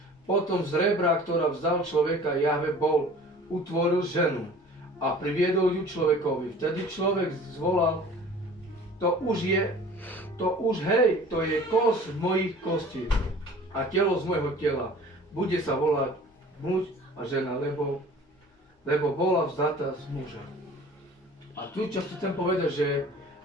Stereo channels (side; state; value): both; normal; correlation 0.46